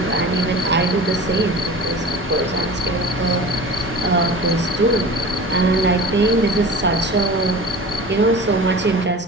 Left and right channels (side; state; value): both; normal; correlation 0.36